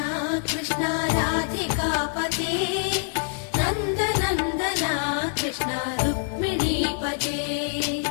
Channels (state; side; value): silent; right; digital silence